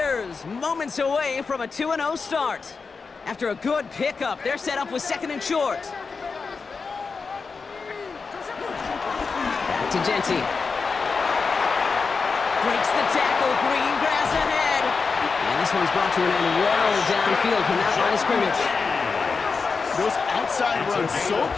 moments away from a 2-0 start. After a good pickup, they're set up with 2nd and short. Back to Genty. Breaks the tackle, green grass ahead. And this one's brought to an end well downfield from that line of scrimmage. Those outside runs so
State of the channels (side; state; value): right; quieter; 4.8 dB